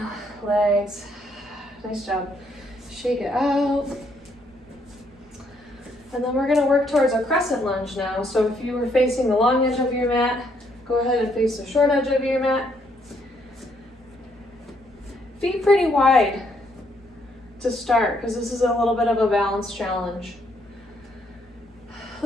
the legs. Nice job. Shake it out. And then we're going to work towards a crescent lunge now. So if you were facing the long edge of your mat, go ahead and face the short edge of your mat. Feet pretty wide to start, because this is a little bit of a balance challenge.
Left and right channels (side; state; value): both; normal; correlation 0.71